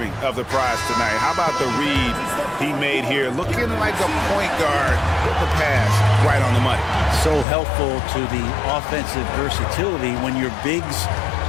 of the prize tonight. How about the read he made here? Looking like a point guard with the pass right on the money. So helpful to the offensive versatility when your bigs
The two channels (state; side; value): drops out; right; at 7.5 s